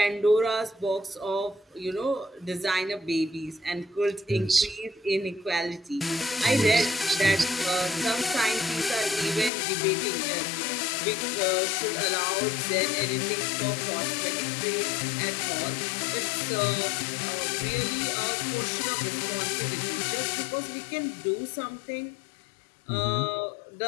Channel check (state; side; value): drops out; right; at 9.5 s